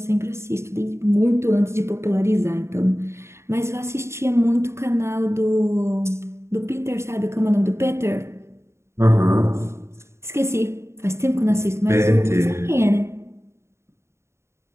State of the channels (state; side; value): late; left; 0.13 ms